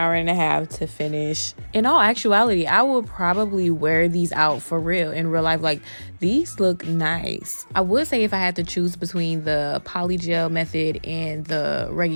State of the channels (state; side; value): inverted; both; correlation -1.00